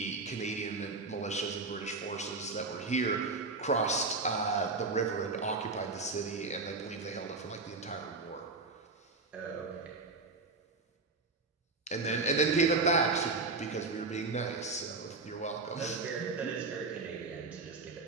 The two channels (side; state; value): left; quieter; 3.8 dB